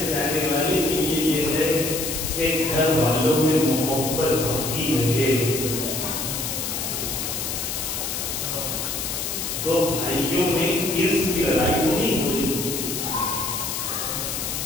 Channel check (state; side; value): noise; left; hiss, 3 dB below the sound